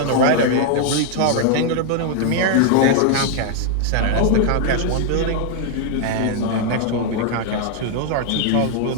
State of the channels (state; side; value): different; both; correlation 0.00